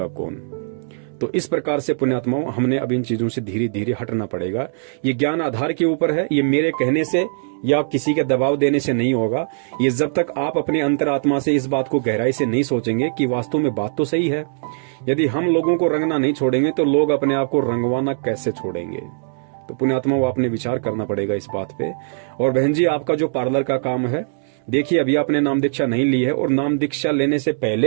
कौन। तो इस प्रकार से पुण्यात्माओं, हमने अब इन चीजों से धीरे धीरे हटना पड़ेगा। ये ज्ञान आधार के ऊपर है, ये मेरे कहने से या किसी के दबाव देने से नहीं होगा। ये जब तक आप अपने अंतरात्मा से इस बात को गहराई से नहीं सोचेंगे कि वास्तव में बात तो सही है, यदि हम लोगों को रंगना नहीं छोड़ेंगे तो लोग अपने आप को रंगवाना कैसे छोड़ेंगे? तो पुण्यात्मा, वो आपने विचार करना पड़ेगा इस बात पे। और बहन जी, आपका जो पार्लर का काम है, देखिए अभी आपने नाम दीक्षा नहीं ली है, और नाम दीक्षा लेने से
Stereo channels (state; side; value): silent; left; digital silence